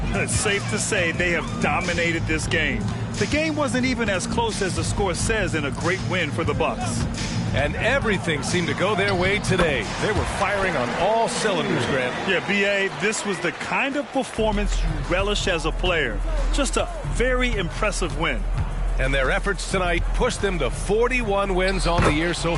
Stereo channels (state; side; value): identical; both; correlation 1.00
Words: It's safe to say they have dominated this game. The game wasn't even as close as the score says in a great win for the Bucks. And everything seemed to go their way today. They were firing on all cylinders, Grant. Yeah, B.A., this was the kind of performance you relish as a player. Just a very impressive win. And their efforts tonight pushed them to 41 wins on the year so